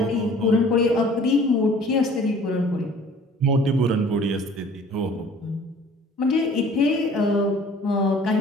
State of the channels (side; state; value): both; normal; correlation 0.50